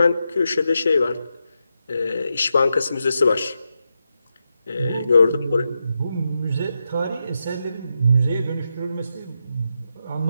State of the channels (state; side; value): inverted; both; correlation -0.86